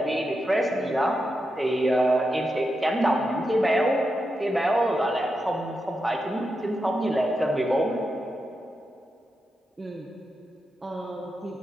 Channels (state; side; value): normal; both; correlation 0.87